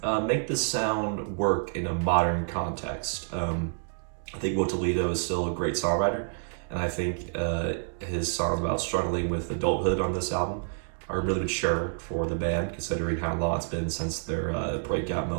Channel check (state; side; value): silent; left; digital silence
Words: make the sound work in a modern context. I think Will Toledo is still a great songwriter, and I think his songs about struggling with adulthood on this album are really mature for the band, considering how long it's been since their breakout